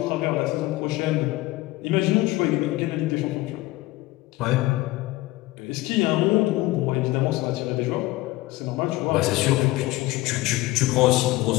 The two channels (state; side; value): quieter; right; 18.6 dB